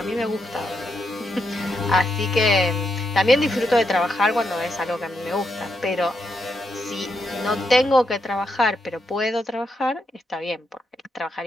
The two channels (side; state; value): both; normal; correlation 0.82